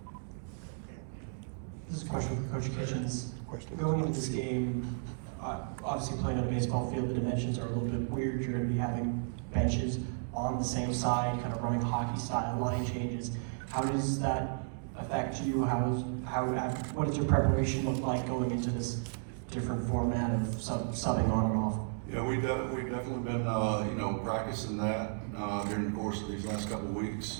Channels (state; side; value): silent; left; digital silence